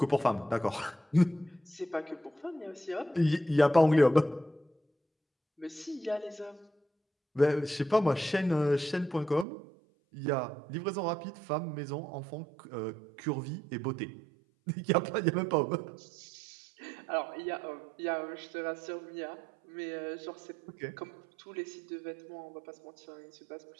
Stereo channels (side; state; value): left; drops out; at 9.5 s